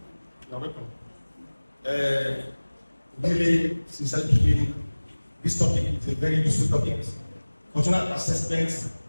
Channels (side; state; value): both; inverted; correlation -1.00